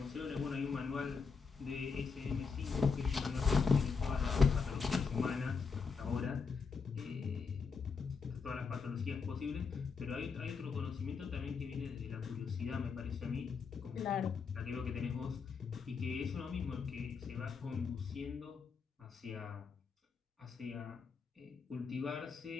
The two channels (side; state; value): right; quieter; 5.2 dB